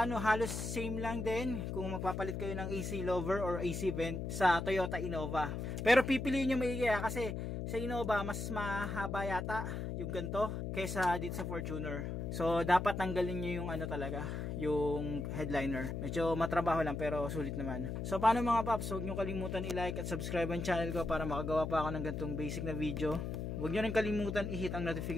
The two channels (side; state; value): left; noise; hum, 4 dB below the sound